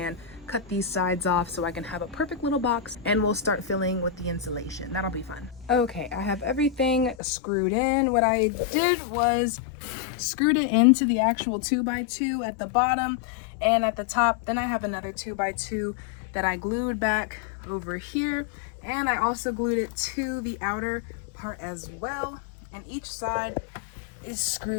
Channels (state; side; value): drops out; right; at 7.2 s